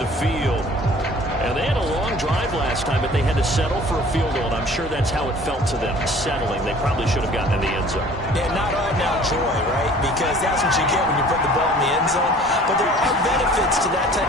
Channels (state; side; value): normal; both; correlation 0.49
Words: field. And they had a long drive last time, but they had to settle for a field goal, and I'm sure that's how it felt to them, settling. They probably should have gotten in the end zone. Yeah, not all now joy, right? Because that's what you get when you put the ball in the end zone. But there are benefits to that